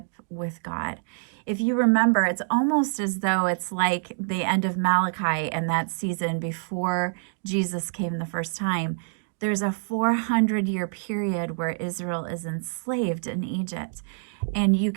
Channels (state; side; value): silent; left; digital silence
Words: with God. If you remember, it's almost as though it's like the end of Malachi and that season before Jesus came the first time. There's a 400-year period where Israel is enslaved in Egypt. And you